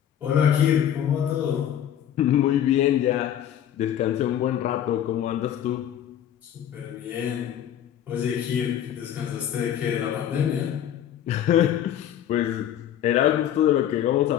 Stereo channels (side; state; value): right; quieter; 10.4 dB